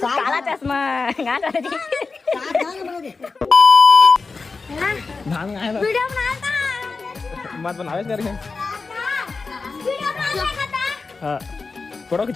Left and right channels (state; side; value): quieter; right; 4.3 dB